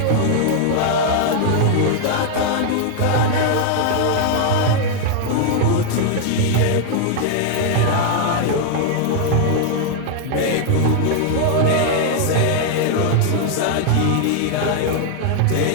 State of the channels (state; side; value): different; both; correlation 0.00